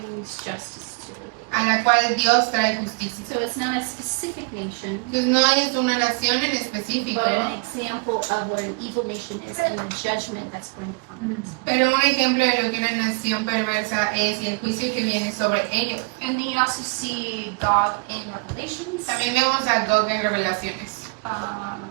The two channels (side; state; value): left; quieter; 34.5 dB